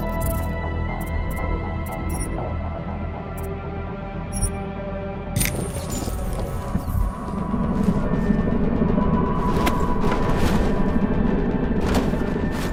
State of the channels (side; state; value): both; identical; correlation 1.00